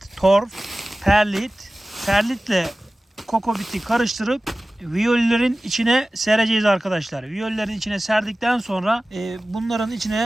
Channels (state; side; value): normal; both; correlation 0.97